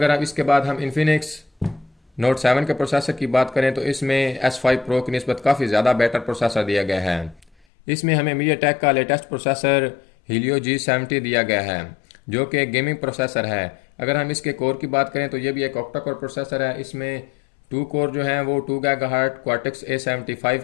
अब इसके बाद हम इन्फिनिक्स नोट 7 के प्रोसेसर की बात करें तो इसमें S5 Pro की निस्बत काफ़ी ज़्यादा बेटर प्रोसेसर दिया गया है। इसमें हमें मीडियाटेक का लेटेस्ट प्रोसेसर Helio G70 दिया गया है, जो कि एक गेमिंग प्रोसेसर है। अगर हम इसके कोर की बात करें तो ये भी एक ऑक्टा कोर प्रोसेसर है। इसमें 2 कोर जो हैं वो 2 GHz Cortex A75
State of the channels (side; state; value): right; drops out; at 7.5 s